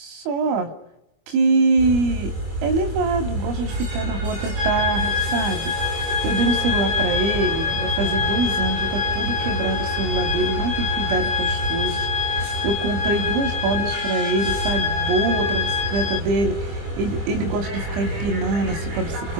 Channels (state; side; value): late; left; 25 ms